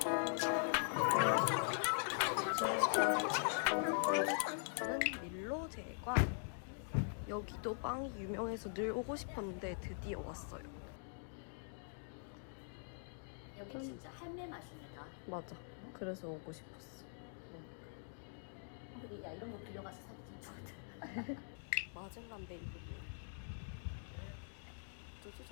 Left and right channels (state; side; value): silent; right; digital silence